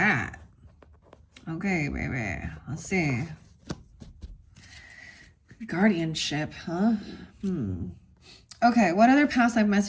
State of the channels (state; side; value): identical; both; correlation 1.00